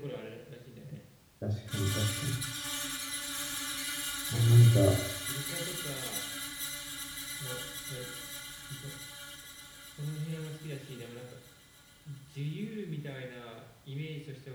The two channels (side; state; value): both; identical; correlation 1.00